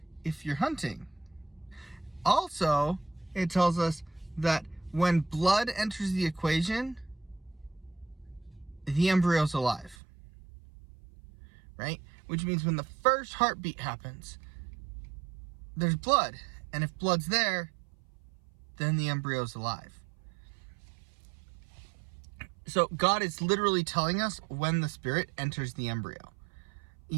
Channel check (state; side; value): drops out; left; at 10.0 s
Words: if you're hunting. Also, it tells us that when blood enters the equation, the embryo's alive. Right? Which means when the first heartbeat happens, there's blood. And if blood's there, then the embryo's alive. So God is literally telling us when the spirit enters the embryo.